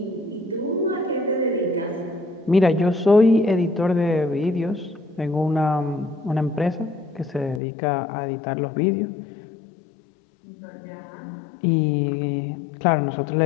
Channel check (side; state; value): right; drops out; at 7.6 s